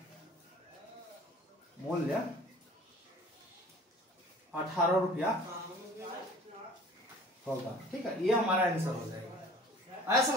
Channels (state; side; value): normal; both; correlation 0.47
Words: मूल्य 18 रुपया होगा, ठीक है। ये हमारा आंसर हो जाएगा। आया